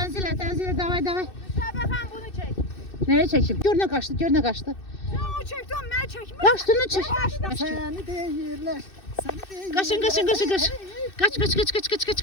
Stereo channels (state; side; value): late; right; 2.6 ms